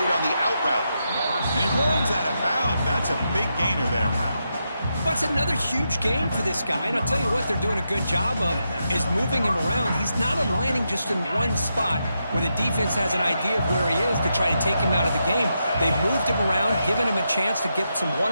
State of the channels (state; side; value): inverted; both; correlation -0.84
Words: on the out route. And he runs out of bounds. That's a big gainer there. That's another huge gain for this guy. And I'll tell you what they're doing a good job of is moving him around. He's not aligning just in one spot where the defense has an idea of where he is to try to take him out of the game. They've moved him around, given him a chance to get some